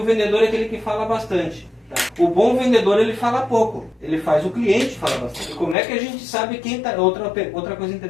vendedor é aquele que fala bastante. Tá? O bom vendedor, ele fala pouco. Ele faz o cliente falar bastante. E como é que a gente sabe quem está... Outra coisa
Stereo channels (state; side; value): drops out; right; at 5.8 s